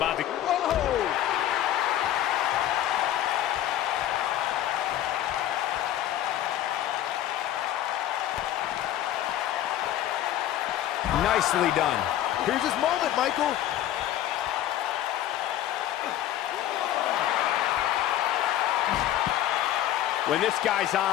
to... Whoa! Nicely done. Here's his moment, Michael. When this guy's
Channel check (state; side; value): quieter; right; 12.5 dB